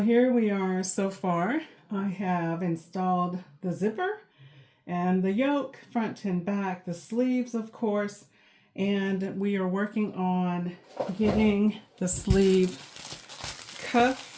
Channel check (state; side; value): identical; both; correlation 1.00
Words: here we are so far. I have installed the zipper and the yoke, front and back, the sleeves, of course. And we are working on getting the sleeve